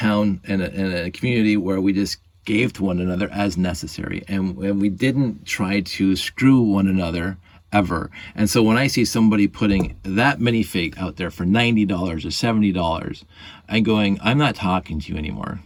and a community where we just gave to one another as necessary. And we didn't try to screw one another ever. And so when I see somebody putting that minifig out there for $90 or $70, I'm going, I'm not talking to you anymore.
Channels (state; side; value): identical; both; correlation 1.00